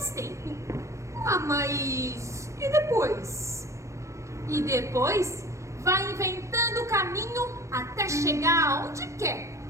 tempo. Ah, mas e depois? E depois vai inventando o caminho até chegar aonde quer.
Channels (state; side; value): late; left; 0.14 ms